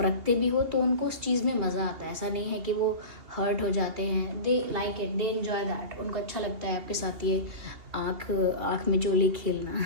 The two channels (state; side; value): late; left; 2.8 ms